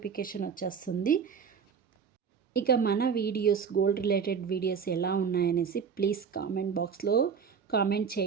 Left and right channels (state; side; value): quieter; left; 6.5 dB